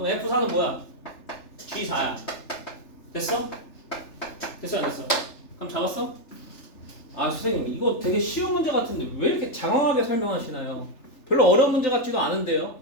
F4는 뭐야? G4야. 됐어? 됐어 안 됐어? 그럼 잡았어? 아 선생님 이거 되게 쉬운 문제 같은데 왜 이렇게 장황하게 설명하시나요? 별로 어려운 문제 같지도 않은데요.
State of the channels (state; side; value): late; right; 3.4 ms